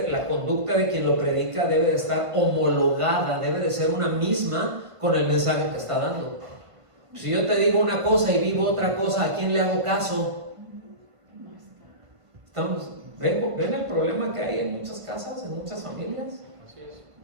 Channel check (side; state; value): left; late; 1.5 ms